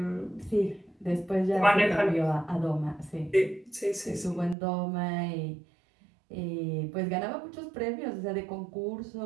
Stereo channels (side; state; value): left; drops out; at 4.5 s